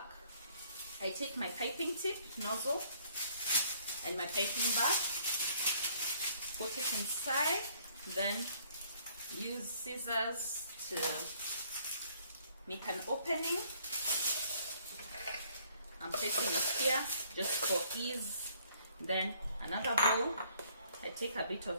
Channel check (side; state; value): both; inverted; correlation -0.62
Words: I take my piping tip nozzle and my piping bag, put it inside, then use scissors to make an opening. I'm placing it here just for ease. Then another bowl, I take a bit